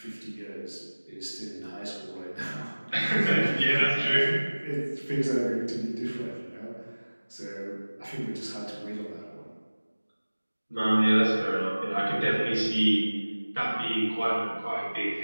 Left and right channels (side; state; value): both; inverted; correlation -1.00